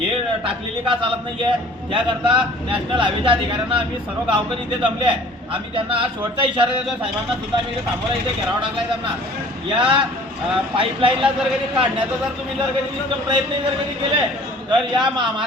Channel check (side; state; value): both; normal; correlation 0.50